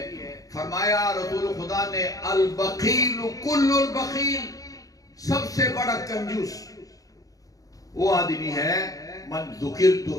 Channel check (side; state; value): right; late; 0.17 ms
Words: فرمایا رسول خدا نے البخیل کل البخیل، سب سے بڑا کنجوس وہ آدمی ہے من ذکرت